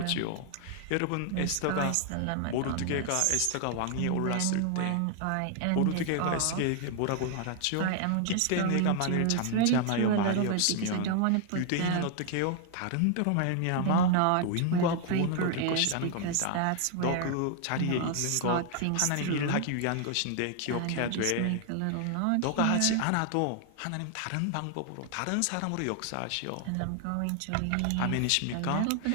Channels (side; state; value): both; different; correlation 0.00